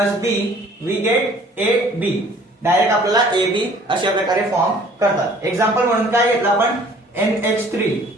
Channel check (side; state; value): both; normal; correlation 0.54